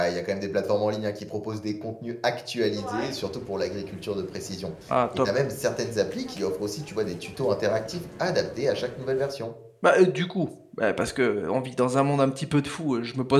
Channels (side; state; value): both; identical; correlation 1.00